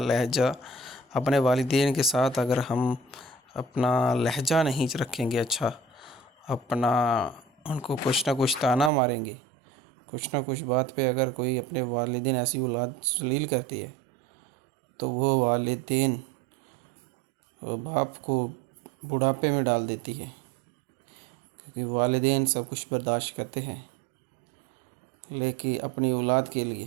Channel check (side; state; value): left; drops out; at 8.9 s